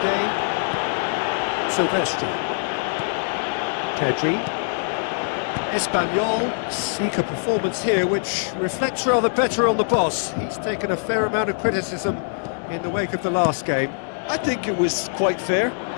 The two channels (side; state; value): right; silent; digital silence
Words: Sylvestre. Pedri. Espanyol seek a performance here which reflects rather better on the boss. He's taken a fair amount of criticism in the wake of the last game. I think it was quite fair,